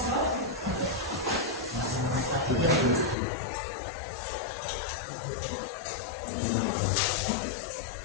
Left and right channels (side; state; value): right; drops out; at 3.2 s